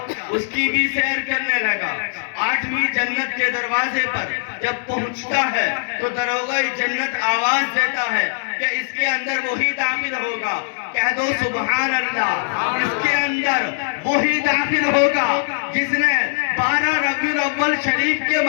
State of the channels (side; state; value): right; silent; 65 dB below the other